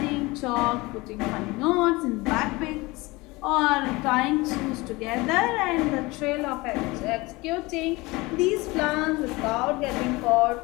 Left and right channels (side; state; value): right; quieter; 22.7 dB